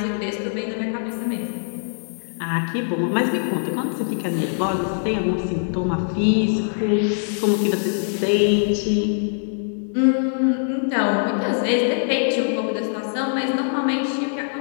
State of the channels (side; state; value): right; silent; digital silence